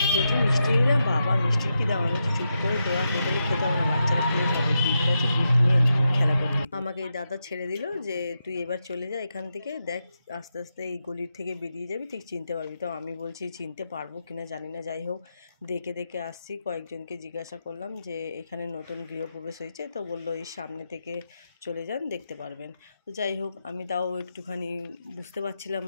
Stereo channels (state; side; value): inverted; both; correlation -0.86